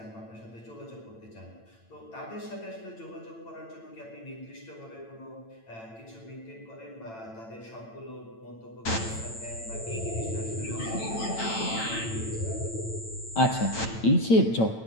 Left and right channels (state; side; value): late; right; 8.9 ms